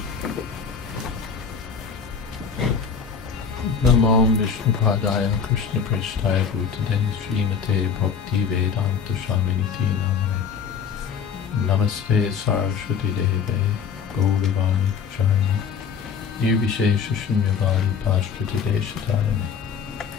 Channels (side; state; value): right; quieter; 6.5 dB